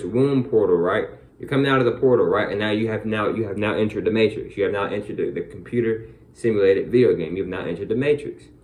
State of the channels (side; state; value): both; identical; correlation 1.00